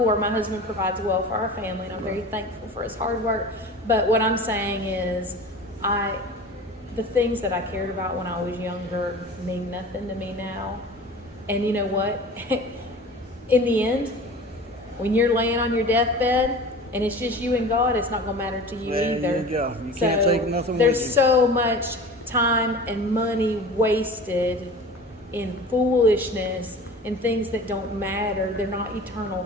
My husband provides well for our family, and I'm very thankful for his hard work. But what I'm saying is, the things that I cared about when I was younger mean nothing to me now. And you know what? In the end, when you're laying on your deathbed and it's just you and God, it's not going to matter to you There either. you go. You can't take nothing There's with you. so much time and money wasted in foolishness and things that don't matter. They're not eternal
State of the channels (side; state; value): both; normal; correlation 0.38